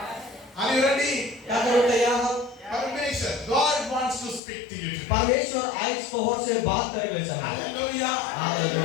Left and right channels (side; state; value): right; drops out; at 4.4 s